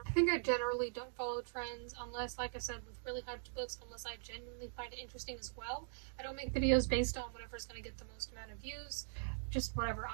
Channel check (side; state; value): left; silent; digital silence